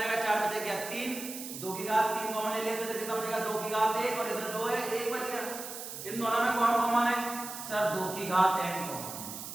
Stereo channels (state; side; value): noise; right; hiss, 9 dB below the sound